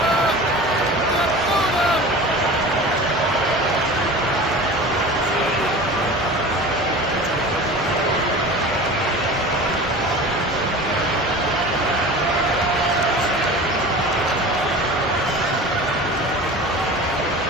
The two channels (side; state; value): both; normal; correlation 0.36